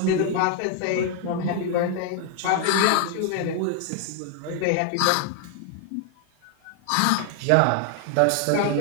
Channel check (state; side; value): different; both; correlation 0.00